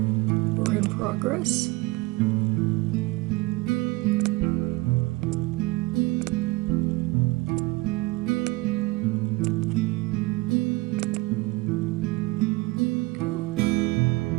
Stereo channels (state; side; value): quieter; left; 21.7 dB